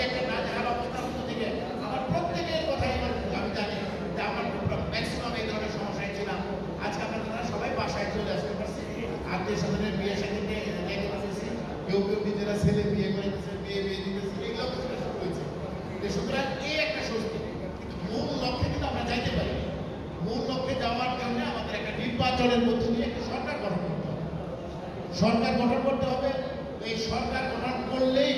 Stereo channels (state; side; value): identical; both; correlation 1.00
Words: একটা নাজেহাল অবস্থার মধ্যে থেকে আমার প্রত্যেকের কথাই আমি জানি যে আমার ম্যাক্সিমাম এই ধরনের সমস্যায় ছিলাম। আজকে আপনারা সবাই বাসায় চলে আসতে পারছি, আত্মীয় স্বজনের বিয়ে সাথে যেতে পারতেছি, কেউ কেউ নিজেরা ছেলে বিয়ে করে দিতেছে, বিয়ে দিতেছে, এইগুলো শুরু হয়েছে। সুতরাং এই একটা স্বস্তি, কিন্তু মূল লক্ষ্যে কিন্তু আমরা যাইতে পারি। মূল লক্ষ্যে যাওয়ার জন্য আমাদের একটা নির্বাচনের মধ্য দিয়ে একটা সরকার গঠন করতে হবে। সরকার গঠন করতে হবে। এই সরকার গঠন করলেই